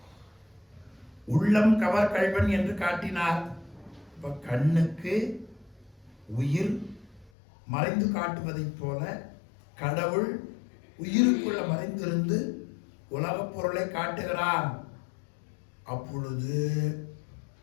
உள்ளம் கவர் கள்வன் என்று காட்டினார். இப்போ கண்ணுக்கு உயிர் மறைந்து காட்டுவதைப் போல கடவுள் உயிருக்குள்ள மறைந்திருந்து உலகப் பொருளை காட்டுகிறான். அப்பொழுது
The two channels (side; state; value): right; drops out; at 7.3 s